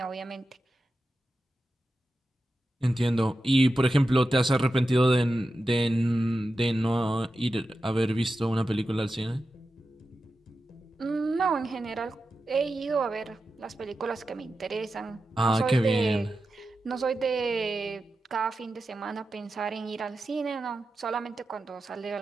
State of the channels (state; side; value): normal; both; correlation 0.91